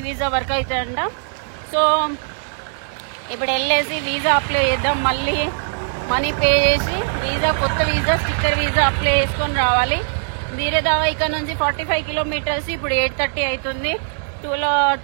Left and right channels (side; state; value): left; silent; digital silence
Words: వీసా వర్క్ అవుతుందంట. సో ఇప్పుడు వెళ్ళేసి వీసా అప్లై చేద్దాం. మళ్ళీ మనీ పే చేసి కొత్త వీసా, స్టిక్కర్ వీసా అప్లై చేసుకొని రావాలి. వీరదావా ఇక్కడ నుంచి 45 kilometers. ఇప్పుడు 8:30 అవుతుంది.